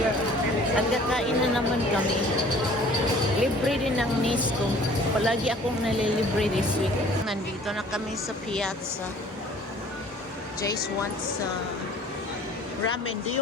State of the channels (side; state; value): both; normal; correlation 0.51